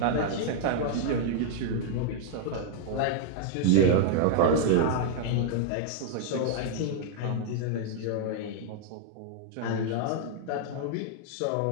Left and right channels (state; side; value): different; both; correlation -0.01